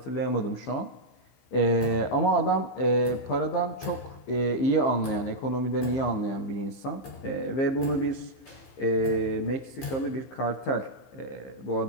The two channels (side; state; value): right; late; 15 ms